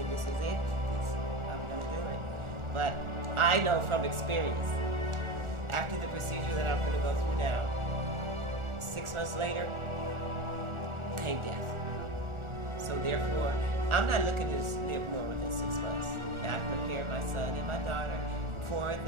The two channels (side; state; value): left; late; 1.4 ms